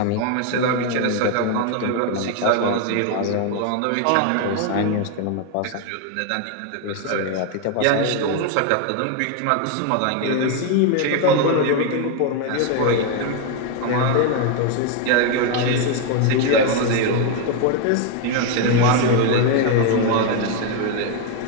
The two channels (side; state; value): both; different; correlation 0.01